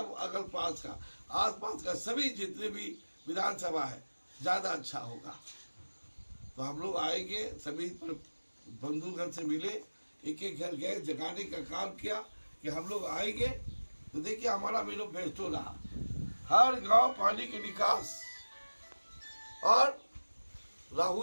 अगल पास का आसपास का सभी जितने भी विधानसभा है ज़्यादा अच्छा होगा। तो हम लोग आएंगे, सभी बंधुगण से मिले, एक एक घर गए, जगाने का काम किया कि हम लोग आएंगे। तो देखिए हमारा मैनिफेस्टो रहा, हर गांव पानी के निकास और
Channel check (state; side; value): inverted; both; correlation -1.00